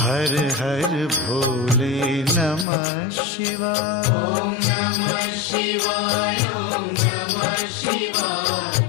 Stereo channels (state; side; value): drops out; right; at 2.7 s